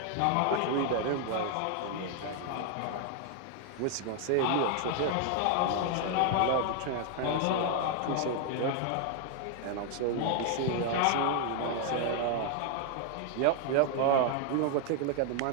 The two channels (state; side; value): different; both; correlation 0.00